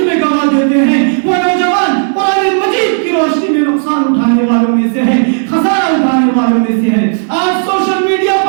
میں گوا دیتے ہیں، وہ نوجوان قرآن مجید کی روشنی میں نقصان اٹھانے والوں میں سے ہے، خسارہ اٹھانے والوں میں سے ہے. آج سوشل میڈیا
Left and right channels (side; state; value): left; silent; digital silence